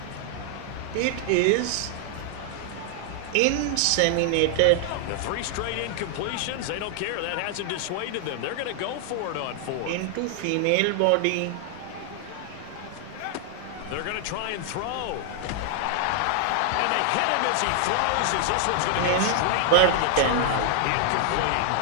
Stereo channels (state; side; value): different; both; correlation 0.00